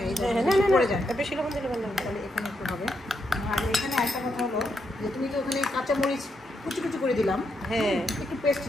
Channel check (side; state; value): both; normal; correlation 0.80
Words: বেশি লবণ দিলে ভালো তাহলে এখানে একটু হবে। আর এখানে একটা কথা হলো যে তুমি তো ওখানে কাঁচামরিচ কুচি করে দিলাম। হ্যাঁ, একটু পেস্ট